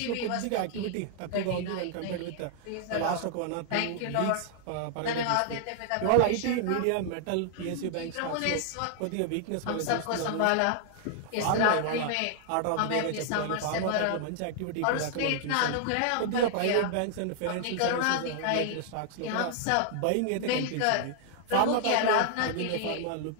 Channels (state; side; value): different; both; correlation -0.01